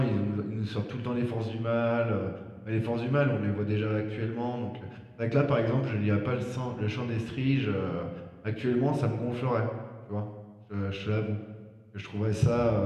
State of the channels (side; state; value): both; identical; correlation 1.00